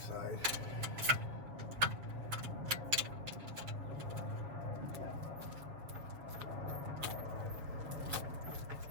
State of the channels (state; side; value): late; left; 7.3 ms